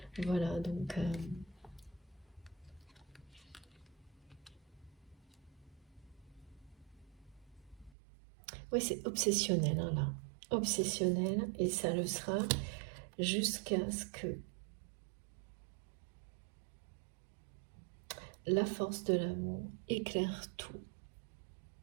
Voilà, donc... oui, c'est obsessionnel, hein, là. Obsessionnel, et ça le sera jusqu'à ce que la force de l'amour éclaire tout.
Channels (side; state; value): left; drops out; at 8.0 s